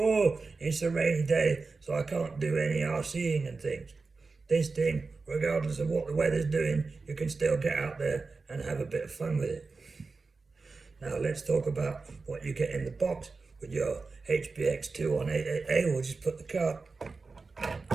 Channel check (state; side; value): quieter; left; 4.1 dB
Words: it's a rainy day, so I can't do any RCing and things. This thing, regardless of what the weather's doing, you can still get out there and have a bit of fun with it. Now let's talk about what you get in the box with your HBX 2188A. We'll just put the car